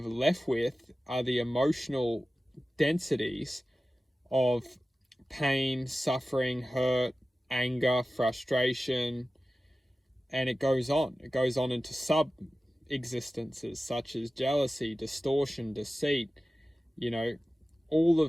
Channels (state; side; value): normal; both; correlation 0.95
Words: left with are the emotional densities of pain, suffering, hurt, anger, frustration, and it goes on. It goes on into sub-existences such as jealousy, distortion, deceit. All